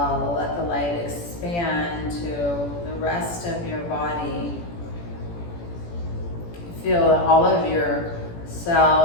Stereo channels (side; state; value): right; late; 17 ms